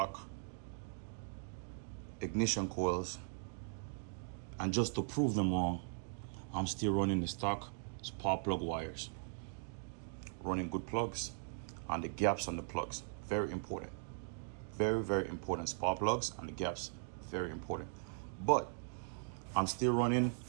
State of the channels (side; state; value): left; silent; digital silence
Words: ignition coils, and just to prove them wrong, I'm still running the stock spark plug wires. Running good plugs and the gaps on the plugs. Very important. Very, very important. Spark plugs and the gaps. Very important. But I'm still running